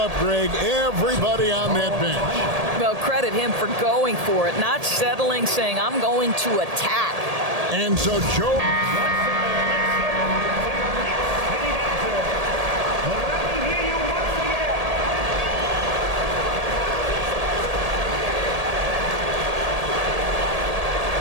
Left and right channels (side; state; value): left; late; 1.8 ms